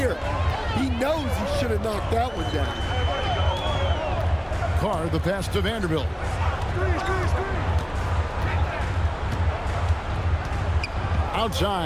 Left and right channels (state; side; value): identical; both; correlation 1.00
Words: He knows he should have knocked that one down. Carr, the pass to Vanderbilt.